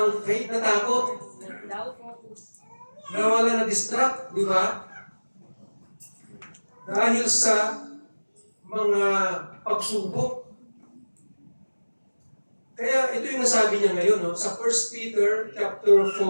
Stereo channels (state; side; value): inverted; both; correlation -1.00